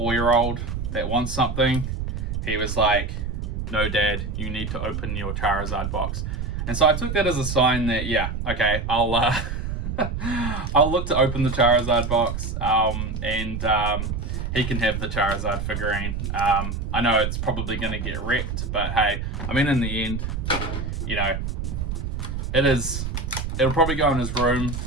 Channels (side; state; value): right; noise; rumble, 4 dB below the sound